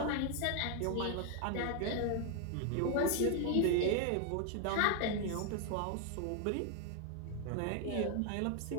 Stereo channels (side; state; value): both; different; correlation 0.00